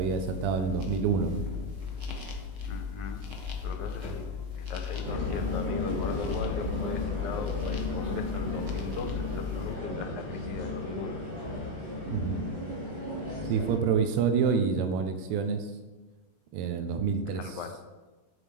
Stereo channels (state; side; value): late; left; 22 ms